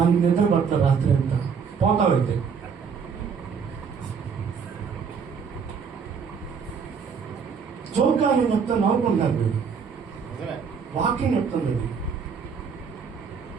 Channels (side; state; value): left; quieter; 6.2 dB